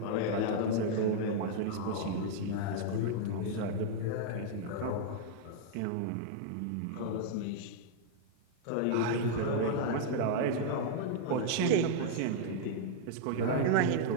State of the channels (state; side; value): different; both; correlation -0.01